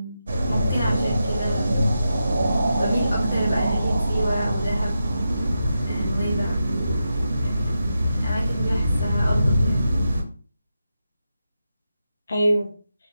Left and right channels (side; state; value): both; inverted; correlation -0.88